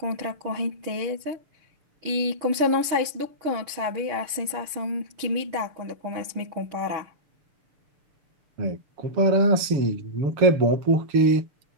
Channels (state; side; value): late; left; 6.8 ms